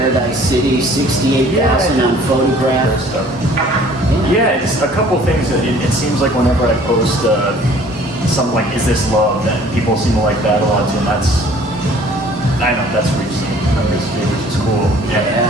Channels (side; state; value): both; normal; correlation 0.53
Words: City, 68,000 on Photographs. Yeah, it's a couple things that it seems like whenever I post something like "Is This Love?" that people seem to like that a lot too, and I know that's recent, which is cool.